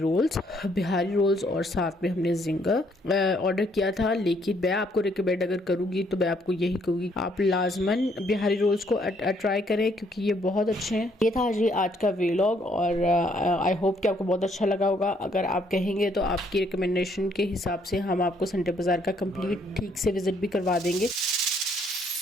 और साथ में हमने जिंगर ऑर्डर किया था। लेकिन मैं आपको रिकमेंड अगर करूँगी तो मैं आपको यही कहूँगी आप लाजमन बिहारी रोल्स को ट्राई करें क्योंकि ये बहुत अच्छे हैं। ये था जी आज का व्लॉग और आई होप कि आपको बहुत अच्छा लगा होगा। अगर आप कहेंगे तो आपकी रिकमेंडेशन के हिसाब से हम आपको संडे बाज़ार का कंप्लीट ठीक से विजिट भी करवा देंगे।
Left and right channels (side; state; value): both; normal; correlation 0.68